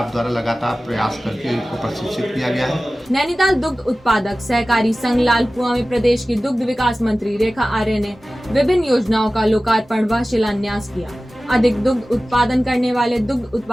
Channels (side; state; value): both; normal; correlation 0.96